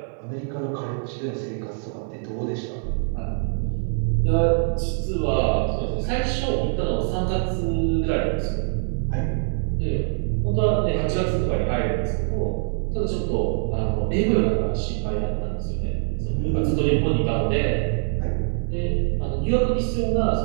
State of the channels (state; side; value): silent; left; 63 dB below the other